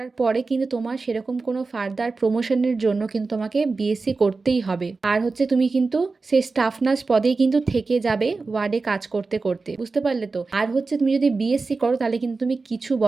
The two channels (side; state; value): left; quieter; 4.0 dB